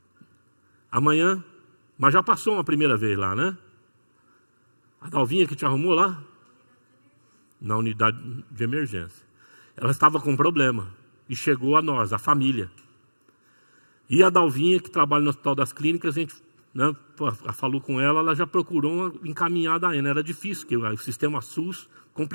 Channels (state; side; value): inverted; both; correlation -1.00